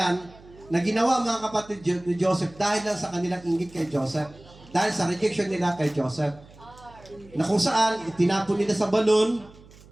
na ginawa mga kapatid ni Joseph dahil lang sa kanilang inggit kay Joseph. Dahil sa rejection nila kay Joseph. Na kung saan, itinapon nila sa balon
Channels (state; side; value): noise; right; hum, 23 dB below the sound